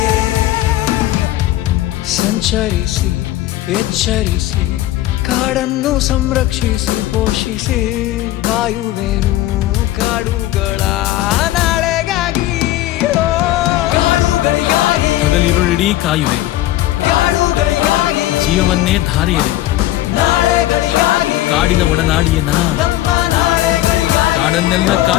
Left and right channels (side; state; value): right; quieter; 15.0 dB